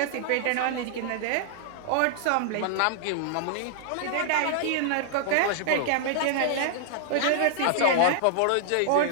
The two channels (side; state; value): both; different; correlation -0.01